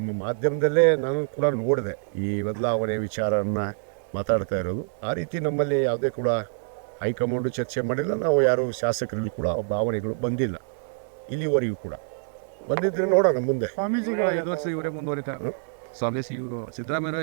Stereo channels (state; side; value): silent; left; 61 dB below the other